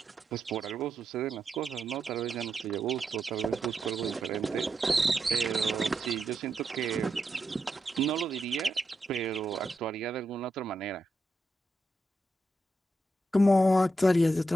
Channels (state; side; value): normal; both; correlation 0.85